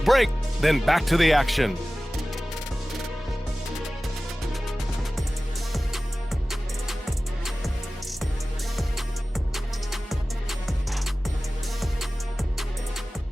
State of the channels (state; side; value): normal; both; correlation 0.97